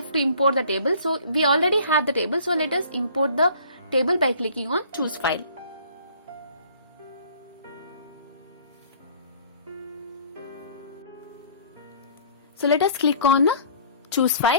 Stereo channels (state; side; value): inverted; both; correlation -0.52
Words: to import the table. So we already have the table, so let us import the table by clicking on choose file. So let us click on choose